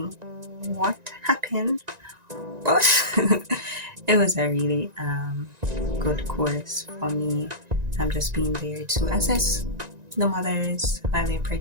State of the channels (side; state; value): left; late; 1.9 ms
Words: what happened, but it was a really good course for me. I'm just being there to assess the mothers while they're